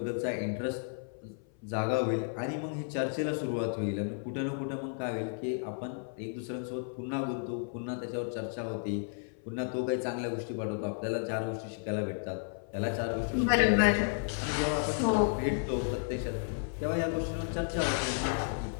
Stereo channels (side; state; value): right; silent; 56 dB below the other